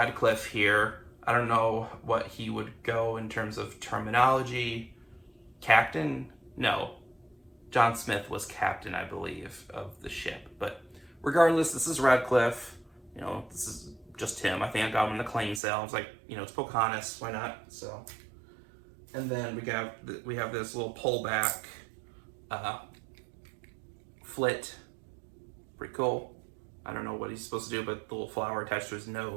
here. I don't know what he would go in terms of terminology. Captain? No. John Smith was captain, I believe, of the ship. But regardless, this is Radcliffe. You know, this is just him. I think I got him in the claim sale. I was like, you know, it's Pocahontas. Why not? So, and then we have this little pullback flit. Pretty cool. I don't know what he's supposed to do, but the little flower attached to his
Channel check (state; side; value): drops out; left; at 15.6 s